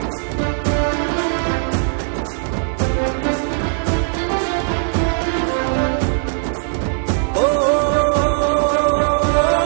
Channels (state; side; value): silent; left; digital silence